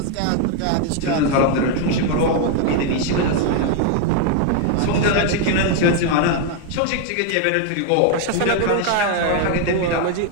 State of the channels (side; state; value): both; different; correlation 0.01